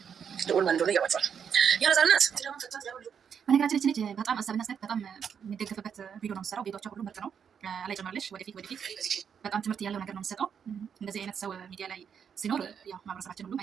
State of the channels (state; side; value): quieter; left; 7.4 dB